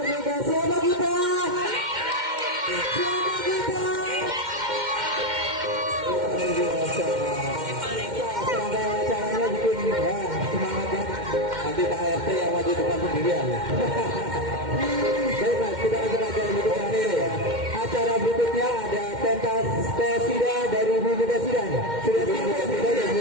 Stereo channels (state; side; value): late; left; 2.1 ms